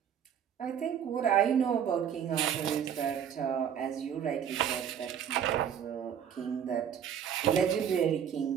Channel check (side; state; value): left; quieter; 8.7 dB